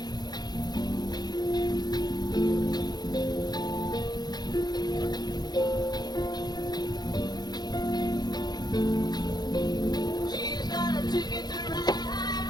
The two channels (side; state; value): right; late; 0.20 ms